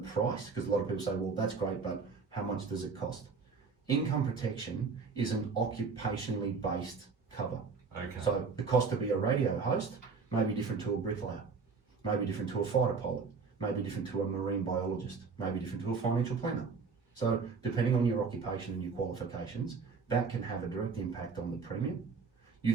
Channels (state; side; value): quieter; left; 5.0 dB